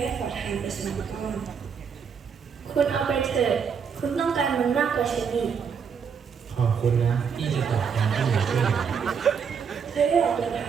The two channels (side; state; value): left; quieter; 6.6 dB